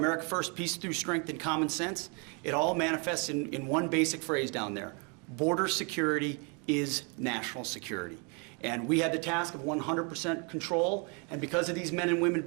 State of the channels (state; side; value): quieter; left; 34.4 dB